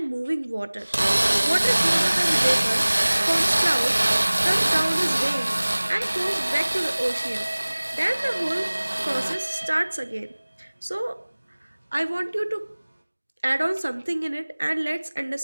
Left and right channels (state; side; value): inverted; both; correlation -1.00